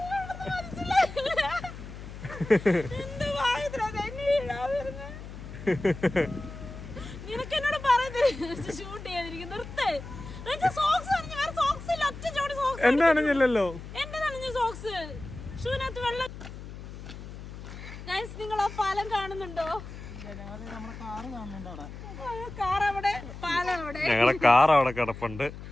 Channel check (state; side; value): noise; left; hum, 12 dB below the sound